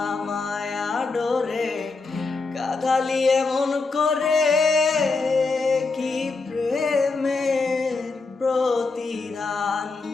মায়া ডোরে কাদালি এমন করে, কি প্রেমের প্রতিদান।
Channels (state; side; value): quieter; right; 3.9 dB